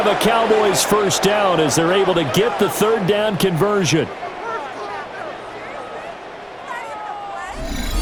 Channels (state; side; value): identical; both; correlation 1.00